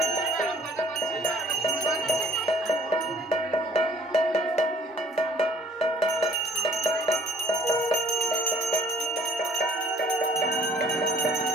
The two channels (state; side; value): normal; both; correlation 0.57